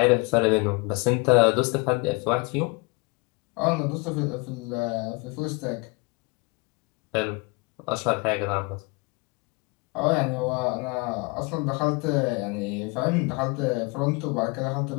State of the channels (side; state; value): right; quieter; 28.4 dB